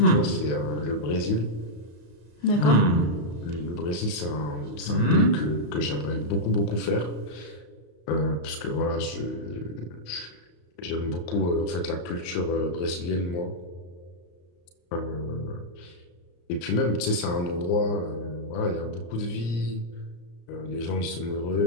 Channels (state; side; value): late; right; 34 ms